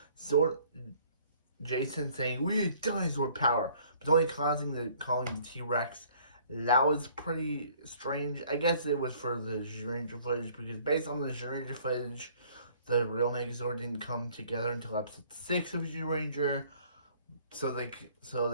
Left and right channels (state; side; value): inverted; both; correlation -0.58